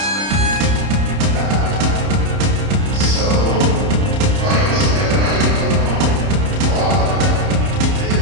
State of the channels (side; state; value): left; late; 30 ms